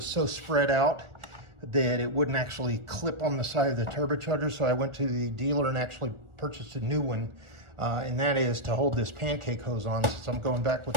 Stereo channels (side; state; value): left; late; 1.4 ms